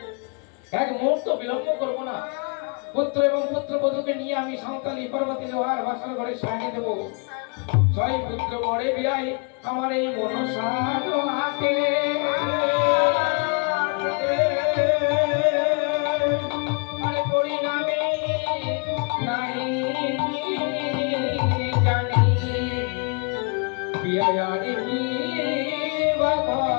এক মুহূর্ত বিলম্ব করবো না। পুত্র এবং পুত্রবধূকে নিয়ে আমি সাঁওতালি পর্বতে লোহার বাসর ঘরে সাজিয়ে দেবো। ছয় পুত্র মরে বিয়াই আমার এই মনসার হাতে আরে পরিণামে নাই জানি বিয়ারি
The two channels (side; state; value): right; quieter; 36.9 dB